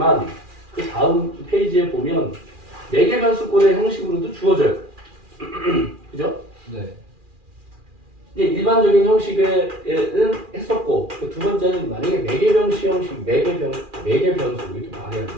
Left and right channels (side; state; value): left; late; 2.4 ms